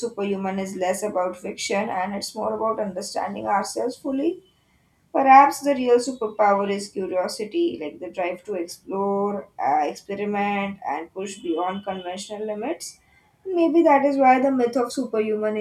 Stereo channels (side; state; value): both; identical; correlation 1.00